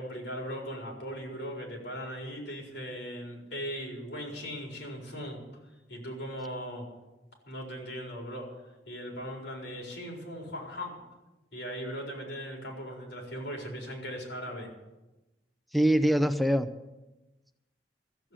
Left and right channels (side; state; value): both; normal; correlation 0.74